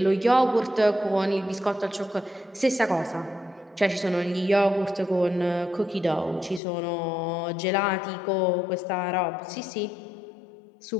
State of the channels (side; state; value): right; drops out; at 6.6 s